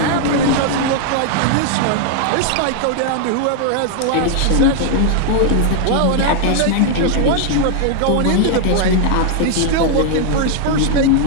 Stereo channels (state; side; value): different; both; correlation 0.00